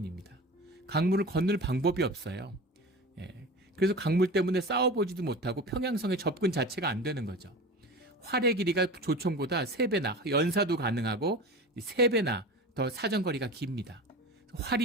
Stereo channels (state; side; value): normal; both; correlation 0.32